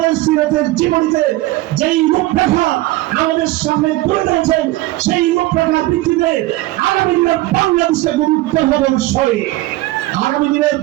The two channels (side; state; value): left; quieter; 18.2 dB